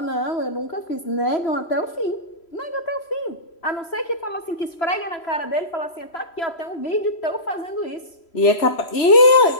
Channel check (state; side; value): late; right; 3.0 ms